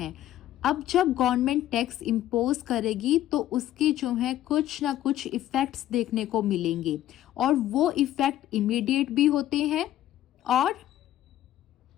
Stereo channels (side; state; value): right; quieter; 13.0 dB